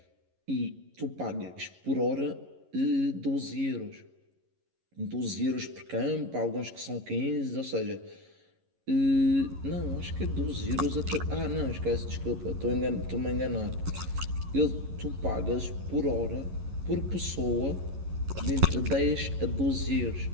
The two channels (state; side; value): late; left; 11 ms